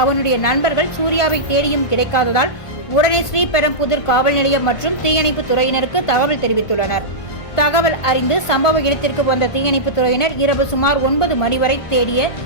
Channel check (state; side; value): late; right; 1.5 ms